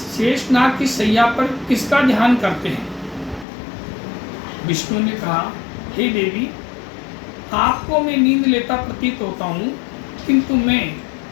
शेषनाग की शैया पर किसका ध्यान करते हैं? विष्णु ने कहा, हे देवी, आपको मैं नींद लेता प्रतीत होता हूँ, किंतु मैं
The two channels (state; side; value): drops out; right; at 3.5 s